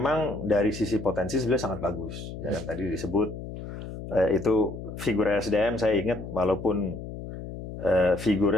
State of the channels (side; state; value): left; noise; hum, 10 dB below the sound